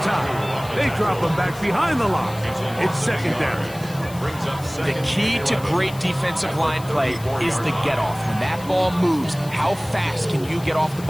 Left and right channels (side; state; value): left; noise; hiss, 18 dB below the sound